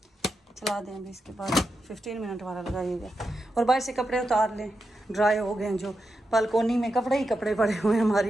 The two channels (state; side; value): normal; both; correlation 0.87